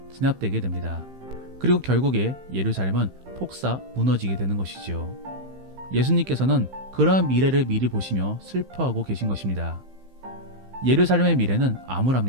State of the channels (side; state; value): left; late; 15 ms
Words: 진압되게 됩니다. 그리고 결국에 예루살렘은 폭사 무너지게 되는 것이지요. 예수님께서는 그러한 미래를 미리 보시며 슬퍼하고 계신 것입니다. 예루살렘의 미래는